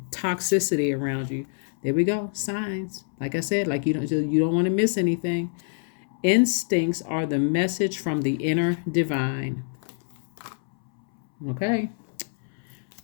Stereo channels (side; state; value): right; silent; 61 dB below the other